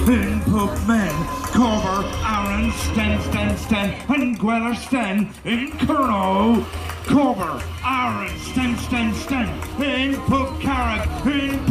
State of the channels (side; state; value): both; identical; correlation 1.00